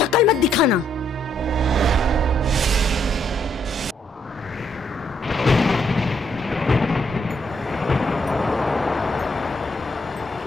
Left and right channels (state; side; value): normal; both; correlation 0.73